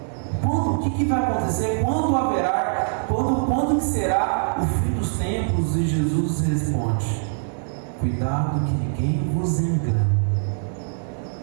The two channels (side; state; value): left; silent; digital silence